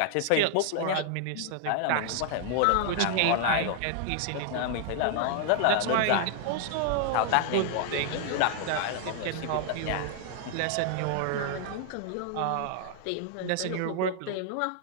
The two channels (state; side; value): different; both; correlation 0.00